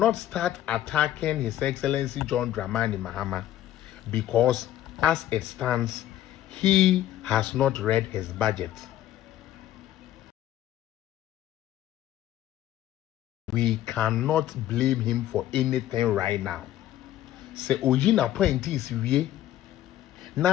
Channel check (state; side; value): quieter; right; 13.0 dB